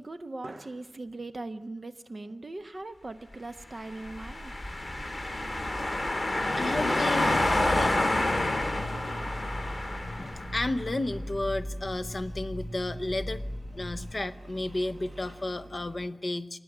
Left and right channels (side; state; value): both; normal; correlation 0.96